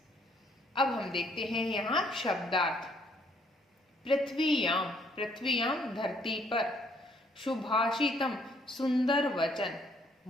अब हम देखते हैं यहाँ शब्दार्थ। पृथ्वीयाम, पृथ्वीयाम धरती पर, शुभाषितम सुंदर वचन,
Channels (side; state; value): both; normal; correlation 0.66